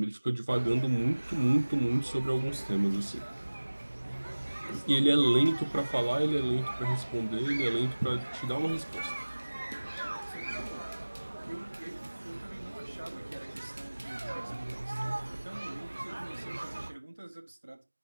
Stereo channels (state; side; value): inverted; both; correlation -1.00